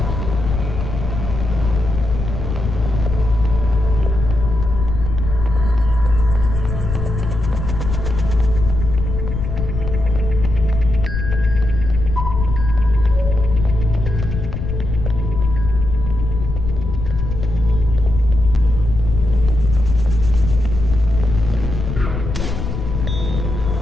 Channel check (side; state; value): left; noise; rumble, 4 dB below the sound